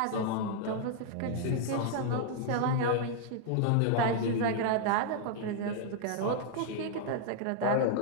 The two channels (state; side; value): different; both; correlation -0.01